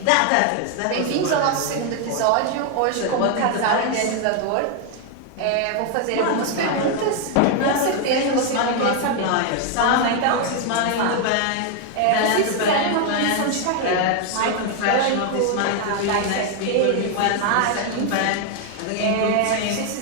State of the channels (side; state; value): both; different; correlation 0.01